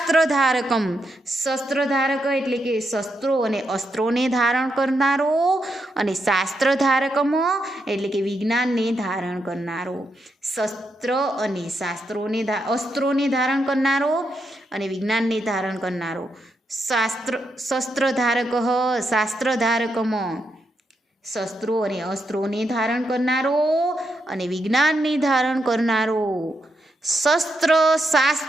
શસ્ત્રધારક એટલે કે શસ્ત્રો અને અસ્ત્રોને ધારણ કરનારો, અને શાસ્ત્રધારકમ એટલે કે વિજ્ઞાનને ધારણ કરનારો. શસ્ત્ર અને અસ્ત્રોને ધારણ કરનારો અને વિજ્ઞાનને ધારણ કરનારો. શસ્ત્રધારક શાસ્ત્રધારકમ, શસ્ત્રો અને અસ્ત્રોને ધારણ કરનારો અને વિજ્ઞાનને ધારણ કરનારો.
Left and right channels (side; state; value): both; normal; correlation 0.82